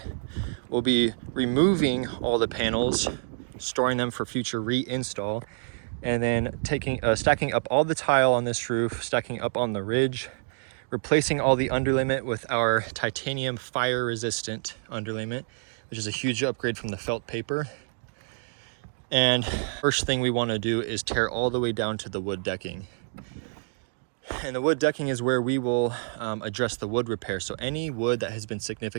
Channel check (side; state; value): left; silent; digital silence